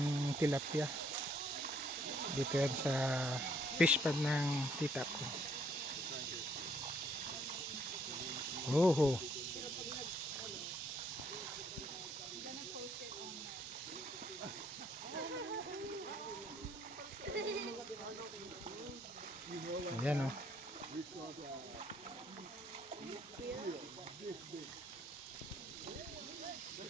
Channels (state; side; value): normal; both; correlation 0.66